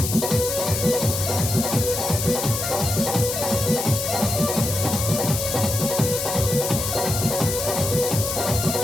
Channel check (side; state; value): left; noise; hiss, 3 dB below the sound